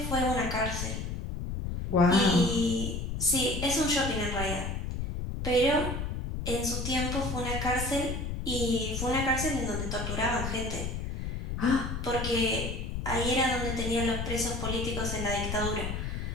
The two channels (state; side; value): noise; left; rumble, 3 dB below the sound